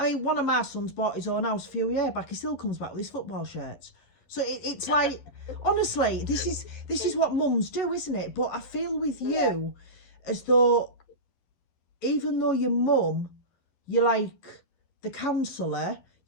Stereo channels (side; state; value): right; late; 11 ms